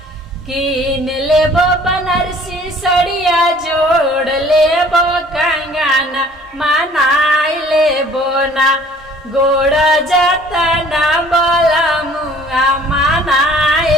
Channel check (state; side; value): normal; both; correlation 0.53